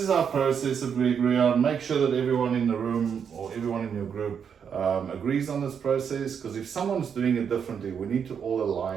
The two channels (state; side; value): quieter; left; 7.3 dB